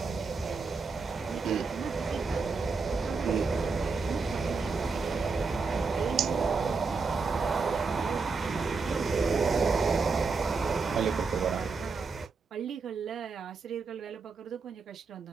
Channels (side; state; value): left; quieter; 4.5 dB